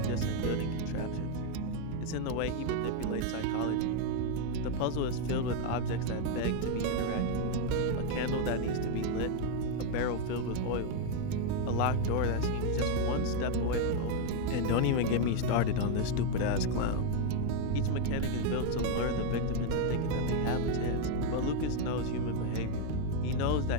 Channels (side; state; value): both; different; correlation 0.00